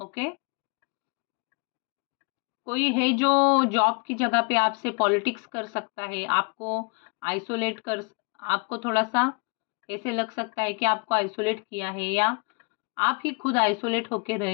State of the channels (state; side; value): quieter; right; 33.2 dB